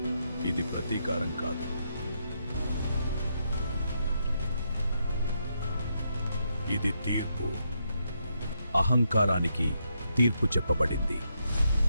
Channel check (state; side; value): inverted; both; correlation -0.80